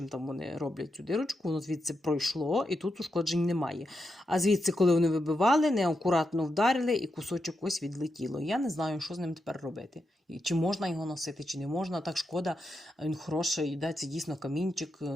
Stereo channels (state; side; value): normal; both; correlation 0.86